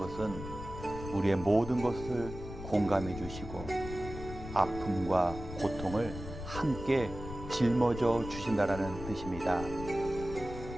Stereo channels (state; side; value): noise; left; rumble, 10 dB below the sound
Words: 우리의 모든 것을 공감해 주시고 아픔과 고통을 함께 짊어져 주신다라는 뜻입니다.